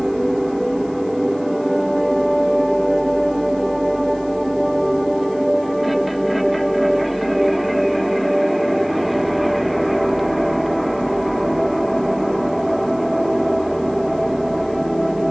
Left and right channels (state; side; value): noise; left; hiss, 28 dB below the sound